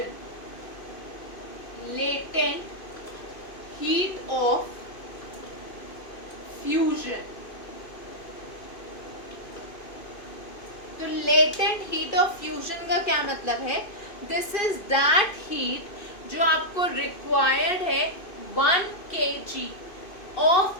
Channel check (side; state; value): right; late; 2.5 ms